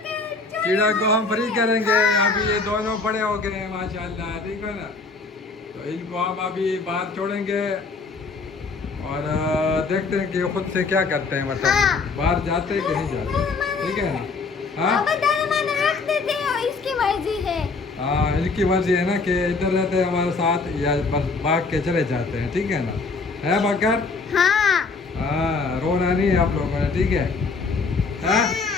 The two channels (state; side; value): quieter; right; 4.2 dB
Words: चिड़िया को हम फ्री करेंगे। अभी ये दोनों बड़े हो गए हैं माशाल्लाह, ठीक है ना। तो इनको हम अभी बाहर छोड़ेंगे और देखते हैं कि ये खुद से क्या करते हैं, मतलब बाहर जाते हैं कि नहीं जाते, ठीक है ना। हाँ इसकी मर्जी है। हाँ, इनकी मर्जी है ना कि इधर रहते हैं हमारे साथ या बस भाग के चले जाते हैं, ठीक है ना। है बकर? हाँ हाँ, रोना नहीं है आप लोगों ने, ठीक है। हाँ